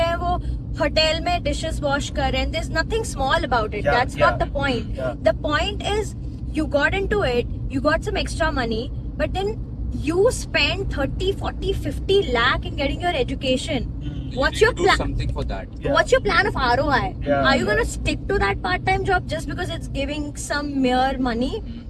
वो होटल में डिशेस वॉश कर रहे हैं. There's nothing small about it. Yeah, That's not the point. Yeah. The point is you got into it, you got some extra money, but then you spend 30, 40, 50 lakh in getting your education. What's your Do plan? something for that. Yeah. What's your plan of ROI? Yeah, Are you going to stick to that part-time job just because it's giving some mere money?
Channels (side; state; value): both; identical; correlation 1.00